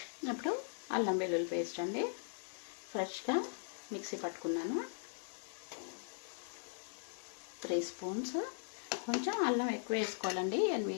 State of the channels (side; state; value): right; silent; digital silence